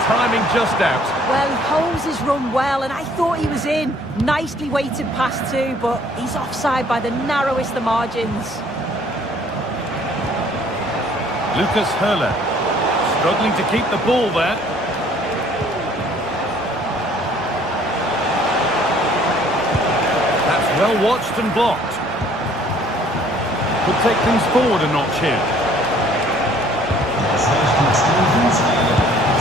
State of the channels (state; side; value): normal; both; correlation 0.58